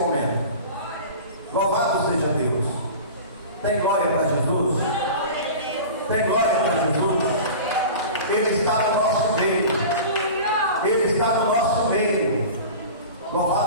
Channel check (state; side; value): inverted; both; correlation -0.36